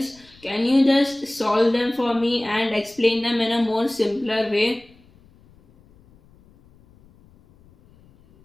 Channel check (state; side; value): noise; left; rumble, 29 dB below the sound